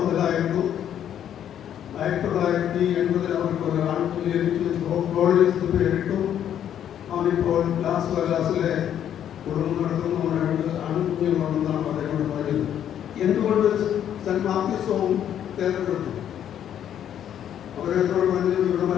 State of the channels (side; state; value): right; quieter; 10.0 dB